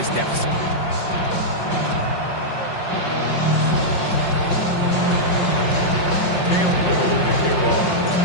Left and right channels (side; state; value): right; late; 5.6 ms